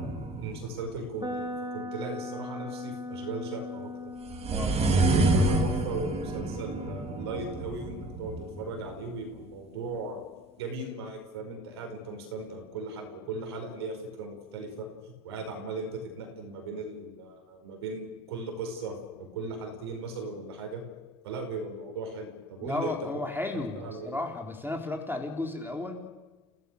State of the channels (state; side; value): normal; both; correlation 0.43